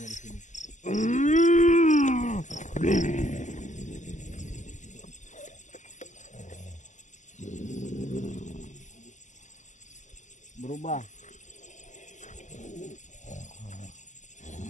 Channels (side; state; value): right; late; 0.35 ms